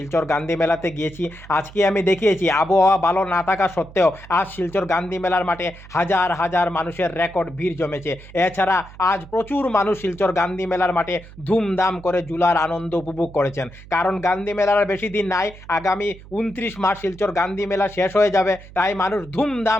গান্ধী মেলাতে গিয়েছি। আজকে আমি দেখিয়েছি আবহাওয়া ভালো না থাকা সত্ত্বেও আজ শিলচর গান্ধী মেলার মাঠে হাজার হাজার মানুষের রেকর্ড ভিড় জমেছে। এছাড়া আজ প্রচুর মানুষ শিলচর গান্ধী মেলার মাঠে ধুমধাম করে ঝুলার আনন্দ উপভোগ করেছেন। কারণ গান্ধী মেলার আর বেশি দিন নাই, আগামী 29 মার্চ শিলচর গান্ধী মেলা শেষ হয়ে যাবে। তাই মানুষ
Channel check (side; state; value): right; noise; hum, 19 dB below the sound